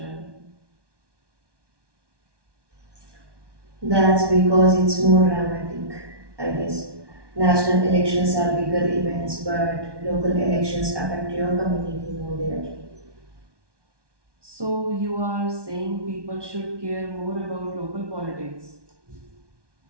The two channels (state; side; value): late; left; 1.2 ms